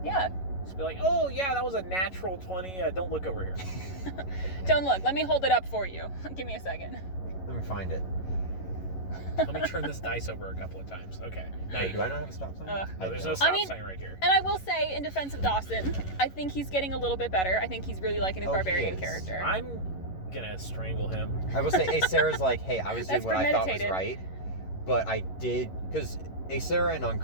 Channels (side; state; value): right; late; 11 ms